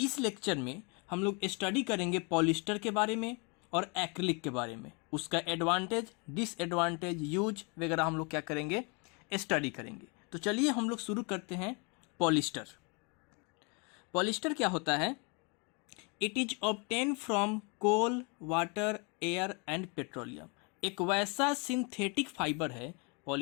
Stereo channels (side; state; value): right; quieter; 32.4 dB